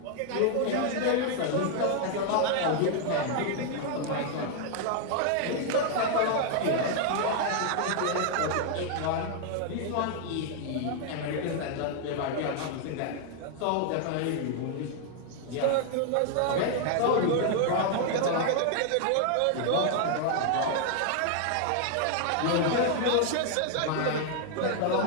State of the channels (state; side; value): different; both; correlation 0.00